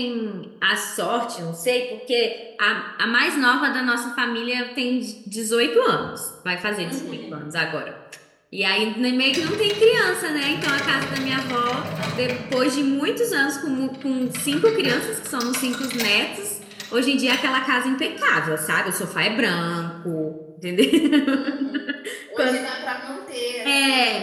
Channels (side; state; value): both; identical; correlation 1.00